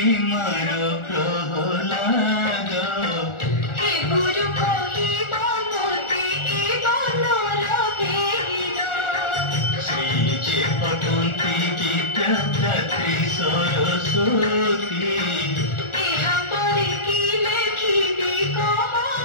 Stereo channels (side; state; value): right; late; 1.4 ms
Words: मार प्रहलाद हे गुरु कहिब मोते ए बनर भेद श्री जे पठन्ति विद्यादात्री सरस्वती एहा परे कि लेखिबि कह